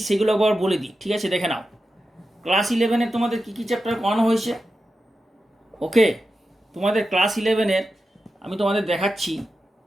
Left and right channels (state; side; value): normal; both; correlation 0.90